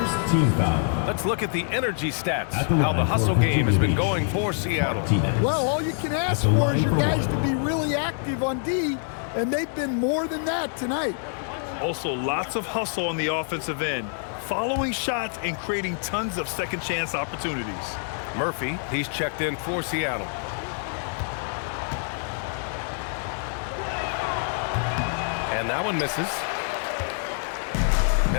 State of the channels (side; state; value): right; silent; 61 dB below the other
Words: team foul. Let's look at the energy stats, how the hustle game has been going for Seattle. Well, all you can ask for is your guys to be really active on D, and they've been more than that tonight. Also, lots of hustle on the offensive end, following shots and creating tons of second chance opportunities. Murphy, he's checked in for Seattle. And that one misses.